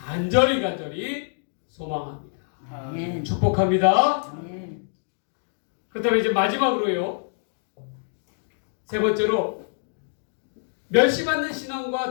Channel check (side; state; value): right; silent; digital silence